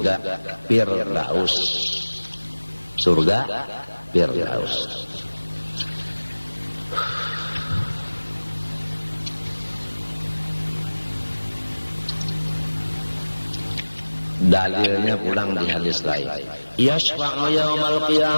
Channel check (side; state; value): both; inverted; correlation -1.00